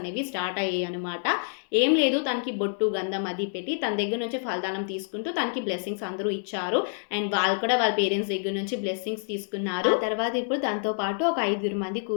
స్టార్ట్ అయ్యాయనమాట. ఏం లేదు, తనకి బొట్టు, గంధం అది పెట్టి తన దగ్గర నుంచి ఫలదానం తీసుకుంటూ తనకి బ్లెస్సింగ్స్ అందరూ ఇచ్చారు. అండ్ వాళ్ళు కూడా వాళ్ళ పేరెంట్స్ దగ్గర నుంచి బ్లెస్సింగ్స్ తీసుకున్నారు. ఆ తర్వాత ఇప్పుడు దాంతో పాటు ఒక 5 మంది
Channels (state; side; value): silent; right; digital silence